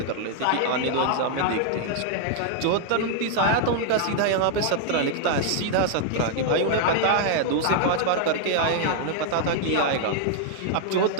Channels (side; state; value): both; different; correlation -0.01